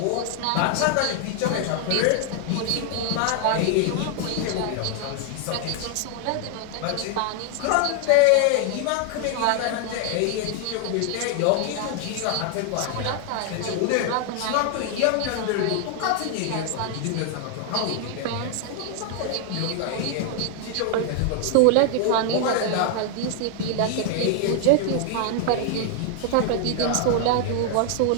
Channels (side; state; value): both; different; correlation 0.00